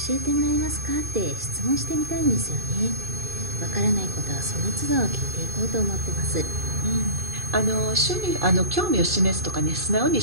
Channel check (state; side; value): late; left; 2.5 ms